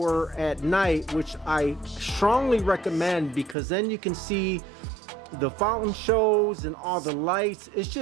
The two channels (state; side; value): drops out; left; at 3.6 s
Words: at night, which I strongly recommend because then you can see the fountain shows and all the lights. It's